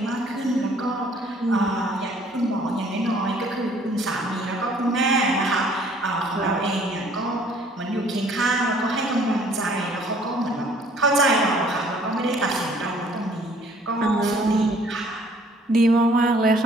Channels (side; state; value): both; normal; correlation 0.57